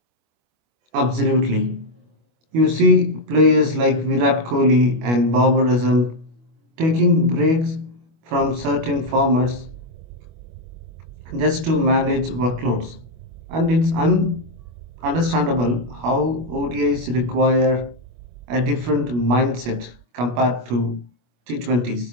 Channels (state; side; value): late; left; 25 ms